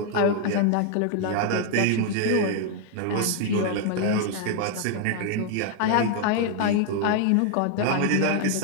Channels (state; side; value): different; both; correlation 0.00